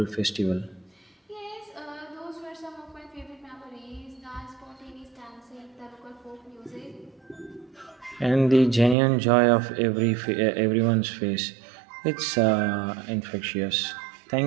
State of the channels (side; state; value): left; drops out; at 9.0 s